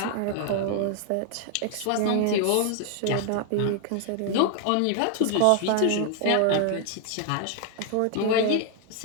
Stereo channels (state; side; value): different; both; correlation 0.00